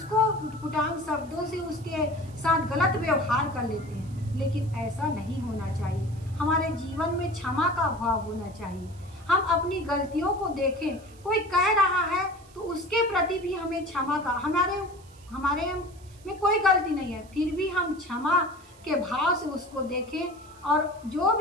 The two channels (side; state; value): right; noise; hiss, 26 dB below the sound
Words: उटपुटांग शब्दों से उसके साथ गलत व्यवहार कर लेते हैं। लेकिन ऐसा नहीं होना चाहिए। हमारे जीवन में क्षमा का भाव होना चाहिए। हम अपनी गलतियों को देखें, कोई कह रहा है तो उसके प्रति भी हमें क्षमा का, हमारे में कोई गलती नहीं है, फिर भी हम क्षमा के भाव से उसको देखें और जो